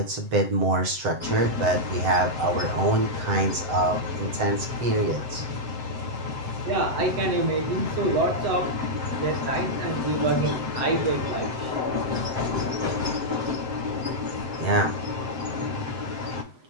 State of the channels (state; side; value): late; left; 7.9 ms